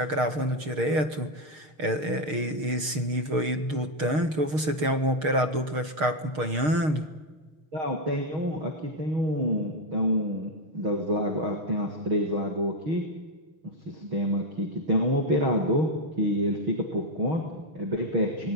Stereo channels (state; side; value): late; left; 6.5 ms